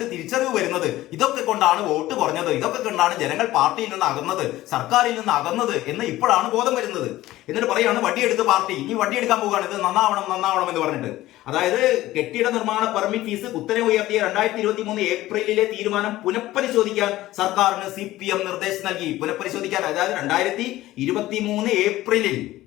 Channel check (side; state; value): right; quieter; 16.1 dB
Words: തിരിച്ചറിവ് വരുന്നത്. ഇതൊക്കെ കൊണ്ടാണ് വോട്ട് കുറഞ്ഞത്, ഇതൊക്കെ കൊണ്ടാണ് ജനങ്ങൾ പാർട്ടിയിൽ നിന്ന് അകന്നത്, സർക്കാരിൽ നിന്ന് അകന്നത് എന്ന് ഇപ്പോഴാണ് ബോധം വരുന്നത്. എന്നിട്ട് പറയാണ് വടിയെടുത്ത് പാർട്ടി ഇനി വടിയെടുക്കാൻ പോവുകയാണ്, ഇത് നന്നാവണം എന്ന് പറഞ്ഞിട്ട്. അതായത് കെട്ടിട നിർമ്മാണ പെർമിറ്റ് ഫീസ് കുത്തനെ ഉയർത്തിയ 2023 ഏപ്രിലിലെ തീരുമാനം പുനഃപരിശോധിക്കാൻ സർക്കാരിന് CPM നിർദ്ദേശം നൽകി. പുനഃപരിശോധിക്കാൻ, അതായത് 2023 ഏപ്രിലിൽ,